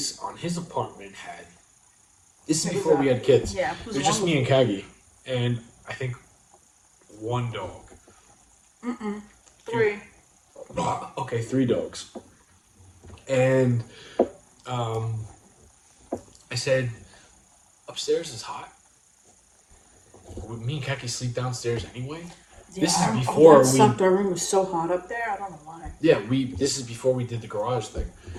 on his apartment had. This is before we had kids. Yeah, it was just me and Kagi, and I think one dog. Three. Okay, 3 dogs. And I said, upstairs is hot. Me and Kaki sleep downstairs anyway. Yeah, this is before that sucked. Our room was so hot up there. I don't know why. Yeah, this is before we did the garage thing.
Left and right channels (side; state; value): both; identical; correlation 1.00